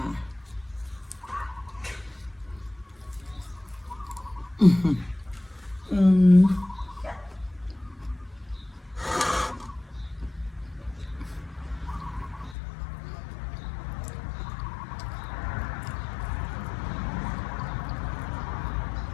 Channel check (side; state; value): right; drops out; at 12.6 s